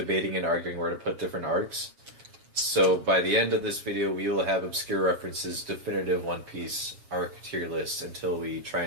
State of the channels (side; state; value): left; late; 7.4 ms